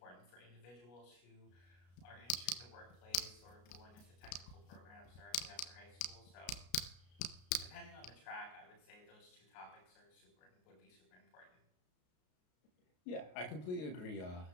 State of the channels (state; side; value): late; right; 33 ms